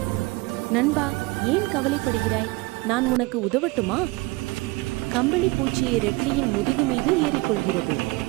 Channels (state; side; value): quieter; left; 23.6 dB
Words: நண்பா, ஏன் கவலைப்படுகிறாய்? நான் உனக்கு உதவட்டுமா? கம்பளி பூச்சியை ரெட்லியின் முதுகு மீது ஏறிக்கொள்கிறது.